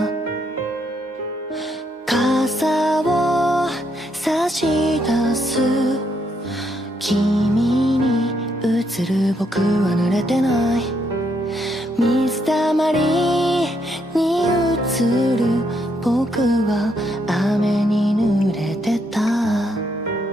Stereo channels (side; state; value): both; normal; correlation 0.75